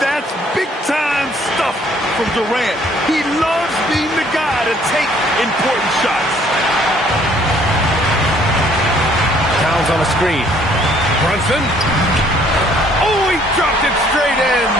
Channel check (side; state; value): both; normal; correlation 0.61